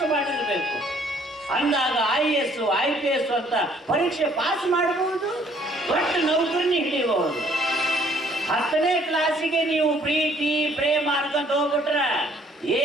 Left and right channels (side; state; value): both; normal; correlation 0.61